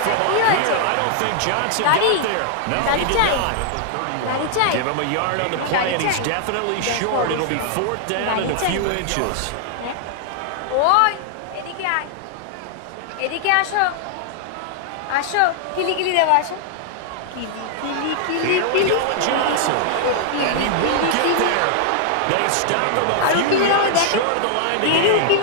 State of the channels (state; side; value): different; both; correlation -0.01